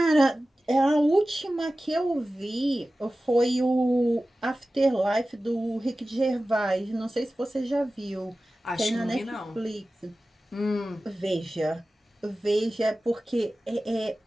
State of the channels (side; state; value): both; normal; correlation 0.96